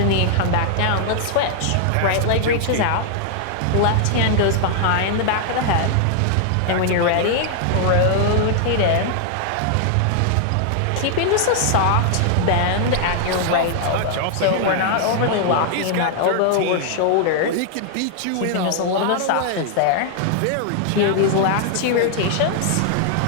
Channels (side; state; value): both; different; correlation 0.00